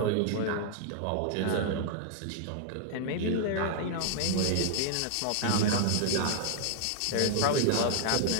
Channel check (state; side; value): different; both; correlation 0.00